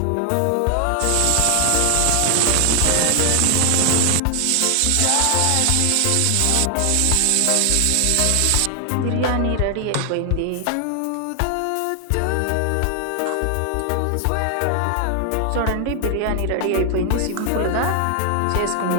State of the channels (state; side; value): different; both; correlation 0.00